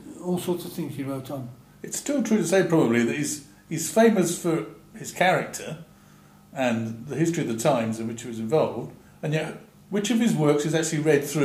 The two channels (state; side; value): identical; both; correlation 1.00